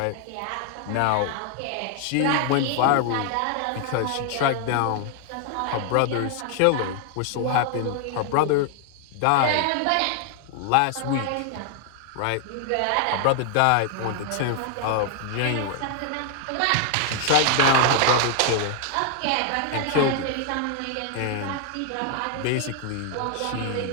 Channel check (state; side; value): different; both; correlation 0.00